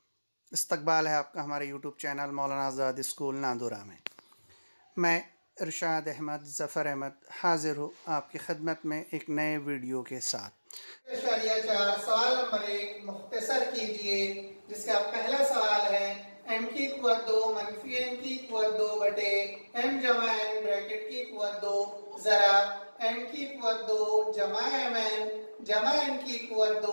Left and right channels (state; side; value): inverted; both; correlation -1.00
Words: इस्तकबाल है आपका हमारे यूट्यूब चैनल मौलाना आज़ाद स्कूल नांदुरा में। मैं इरशाद अहमद ज़फ़र अहमद हाज़िर हूँ आपकी खिदमत में एक नए वीडियो के साथ। सवाल नंबर 1 मुख्तसर कीजिए, जिसका पहला सवाल है m की क़ुव्वत 2 मनफी n की क़ुव्वत 2 बटे m जमा n ब्रैकेट की क़ुव्वत 2। ज़रा m की क़ुव्वत 2 जमा mn जमा n की क़ुव्वत